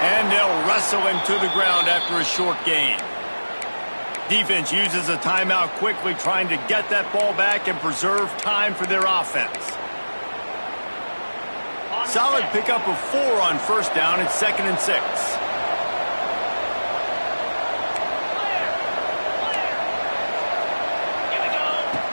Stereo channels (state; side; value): inverted; both; correlation -1.00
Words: And they'll wrestle him to the ground after a short gain. Defense uses a timeout quickly, trying to get that ball back and preserve time for their offense. Solid pickup of 4 on 1st down. It's 2nd and 6.